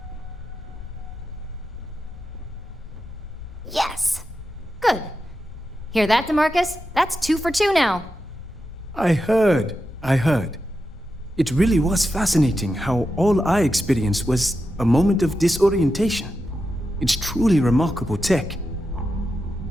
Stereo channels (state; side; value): normal; both; correlation 0.89